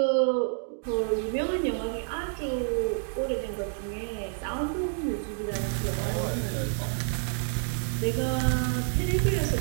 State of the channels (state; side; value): silent; left; digital silence